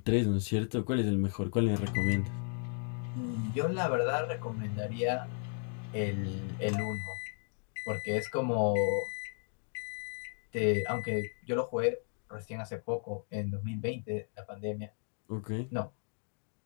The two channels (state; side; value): silent; right; 55 dB below the other